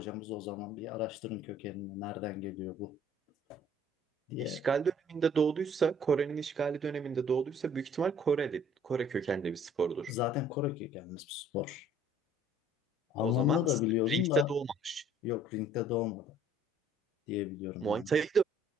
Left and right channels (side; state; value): both; normal; correlation 0.57